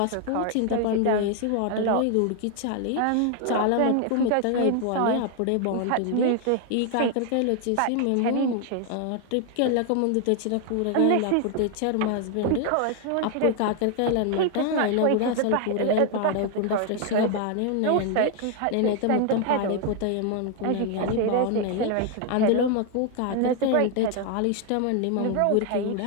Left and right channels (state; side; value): different; both; correlation 0.00